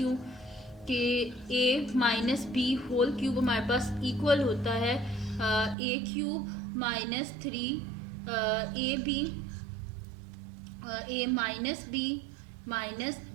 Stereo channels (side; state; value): left; drops out; at 5.8 s